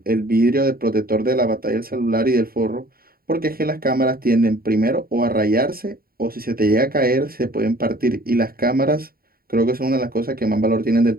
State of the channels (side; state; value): left; late; 0.43 ms